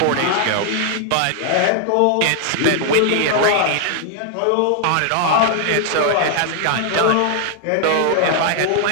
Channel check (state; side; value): different; both; correlation 0.00